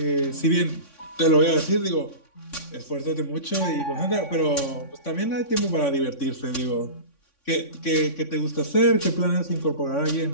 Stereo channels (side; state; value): right; late; 3.6 ms